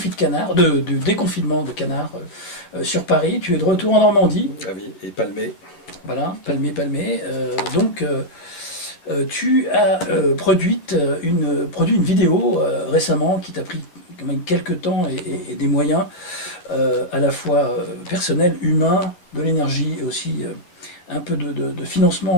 de canard, du déconfinement de canard sur Paris. Tu es de retour en Normandie. Ah oui, et Palmé. Voilà, Palmé. Tu as produit une vidéo récemment qui t'a pris quand même quelques temps et des moyens à la fois personnels, humains, de l'énergie et aussi un peu de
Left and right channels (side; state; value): right; late; 11 ms